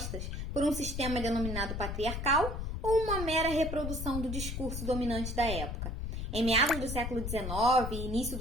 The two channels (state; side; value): noise; left; rumble, 4 dB below the sound